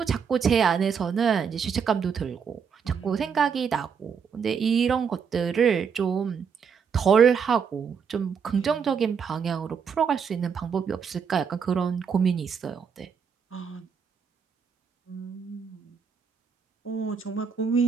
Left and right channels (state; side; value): quieter; left; 6.6 dB